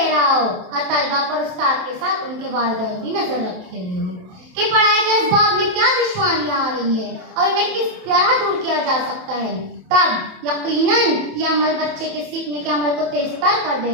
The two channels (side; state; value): left; late; 27 ms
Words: रहा हो और तलबा पर उस्ताद के साथ उनके वालिदैन भी नजर रखे हुए हो कि पढ़ाई के इस बाब में क्या दुश्वारियां आ रही है और इन्हें किस तरह दूर किया जा सकता है। तब यकीनन यह अमल बच्चे के सीखने के अमल को तेज तर कर